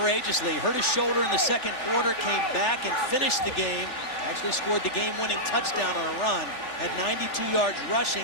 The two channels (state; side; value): late; right; 3.4 ms